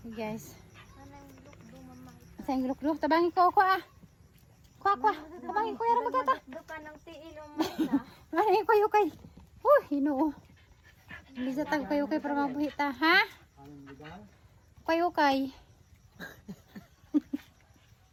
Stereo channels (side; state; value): both; identical; correlation 1.00